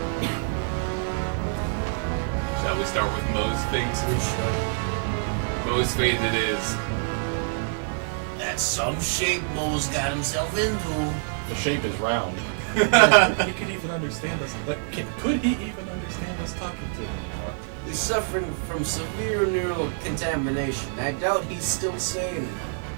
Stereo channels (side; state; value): left; silent; digital silence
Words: Shall we start with Moe's fate? We should. Moe's fate it is. That's some shape Moe's got himself into. The shape is round. He could even understand us. Could he even understand us talking to him anymore? He's suffering from severe neural contamination. I doubt he's still sane.